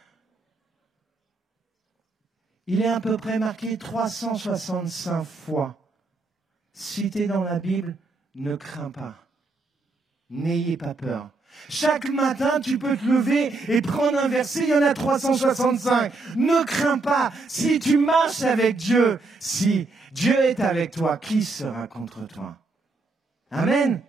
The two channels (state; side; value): quieter; left; 3.5 dB